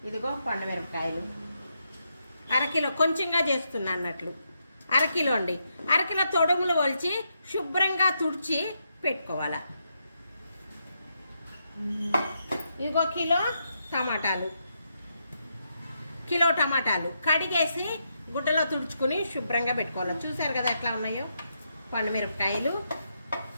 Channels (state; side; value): inverted; both; correlation -0.81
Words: ఇదిగో పండుమిరపకాయలు అరకిలో, కొంచెంగా చేస్తున్నా అన్నట్లు అరకిలో అండి. అరకిలో తొడుములు వలిచి శుభ్రంగా తుడిచి పెట్టుకోవాలి. ఇంకో కిలో టమాటాలు కడిగేసి గుడ్డలో తుడుచుకుని శుభ్రంగా పెట్టుకోవాలి. చూసారు కదా ఎట్లా ఉన్నాయో. పండుమిరపకాయలు